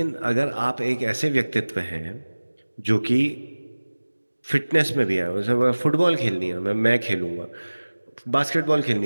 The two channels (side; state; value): both; inverted; correlation -1.00